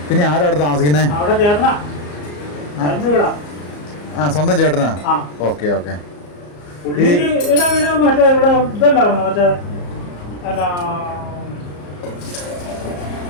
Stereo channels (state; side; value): late; right; 34 ms